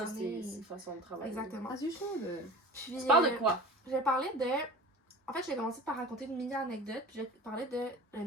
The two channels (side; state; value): both; normal; correlation 0.38